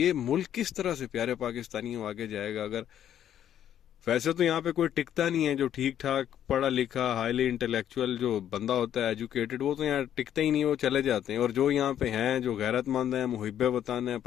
ملک کس طرح سے پیارے پاکستانیوں آگے جائے گا؟ اگر ویسے تو یہاں پہ کوئی ٹکتا نہیں ہے، جو ٹھیک ٹھاک پڑھا لکھا ہائیلی انٹلیکچوئل جو بندہ ہوتا ہے ایجوکیٹڈ، وہ تو یہاں ٹکتا ہی نہیں، وہ چلے جاتے ہیں۔ اور جو یہاں پہ ہیں، جو غیرت مند ہیں، محب وطن ہیں،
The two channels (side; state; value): right; quieter; 10.4 dB